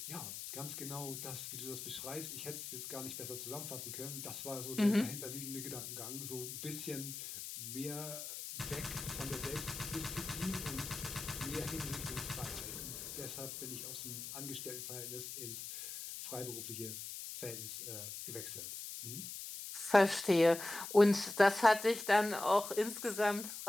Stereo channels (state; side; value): noise; left; hiss, 8 dB below the sound